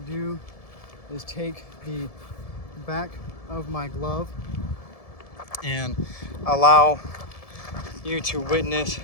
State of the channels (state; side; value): late; right; 1.7 ms